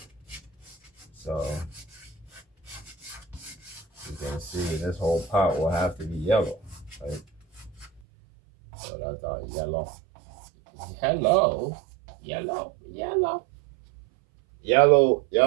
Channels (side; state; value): left; drops out; at 8.0 s